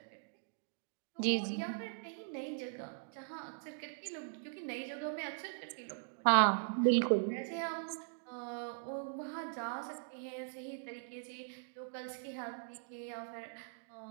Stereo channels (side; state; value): left; silent; digital silence